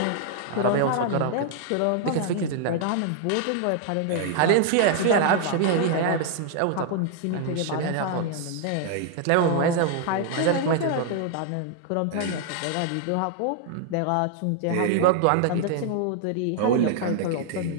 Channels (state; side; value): different; both; correlation 0.00